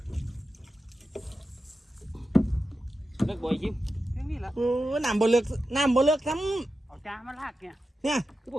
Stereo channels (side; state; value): both; normal; correlation 0.91